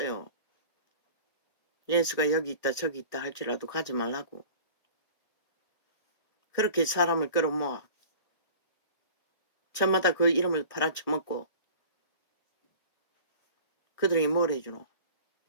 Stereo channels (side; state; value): right; late; 1.8 ms